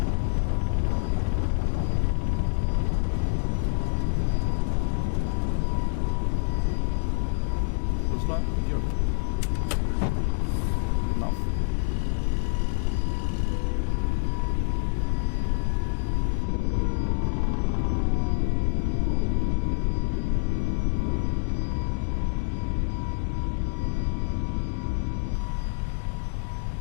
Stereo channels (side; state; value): right; silent; digital silence